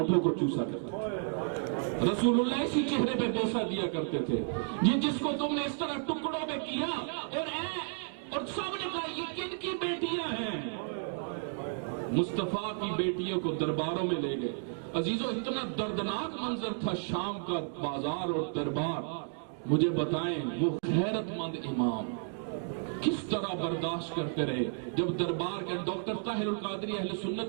کو چوسا کرتے تھے، رسول اللہ اسی چہرے پہ بوسہ دیا کرتے تھے، جس کو تم نے اس طرح ٹکڑوں میں کیا، اور سب نے کہا یہ کن کی بیٹیاں ہیں؟ مصطفیٰ کی بیٹیوں کو درباروں میں لے گئے۔ عزیزو، اتنا دردناک منظر تھا شام کا بازار اور دربار۔ مجھے بتائیں وہ غیرت مند امام کس طرح برداشت کرتے رہے جب دربار کے ڈاکٹر طاہر القادری اہل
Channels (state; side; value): silent; left; 56 dB below the other